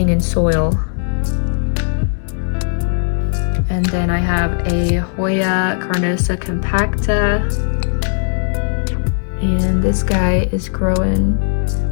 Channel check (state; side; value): silent; right; digital silence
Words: in soil. And then I have a Hoya Carnosa compacta. And this guy is growing